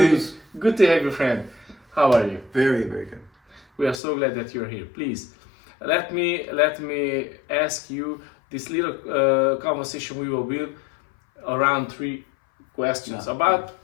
Good to have you, friend. How are you? Very, very good. We are so glad that you're here. Please, let me ask you this little conversation we will build around 3 questions about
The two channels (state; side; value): drops out; right; at 4.0 s